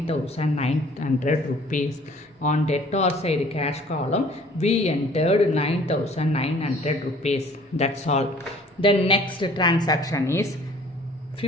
rupees. On debtor side cash column we entered 9,900 rupees. That's all. The next transaction is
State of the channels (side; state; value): both; normal; correlation 0.53